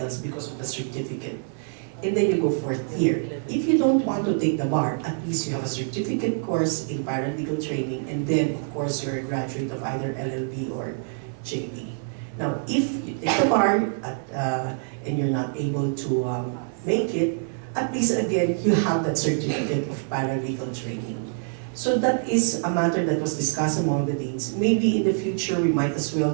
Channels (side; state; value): left; silent; 61 dB below the other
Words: because of the certificate. And then you go 4th year. If you don't want to take the bar, at least you have a certificate course in paralegal training, and then of course you're a graduate of either LLB or JD. Now, if you take the bar and you're not able to make it, at least again, you have that certificate of paralegal training. So that is a matter that was discussed among the deans. Maybe in the future, we might as well